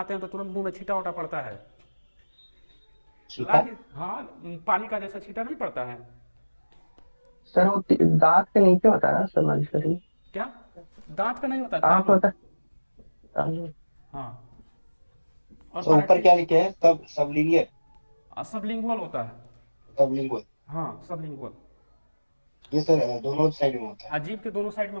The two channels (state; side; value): inverted; both; correlation -1.00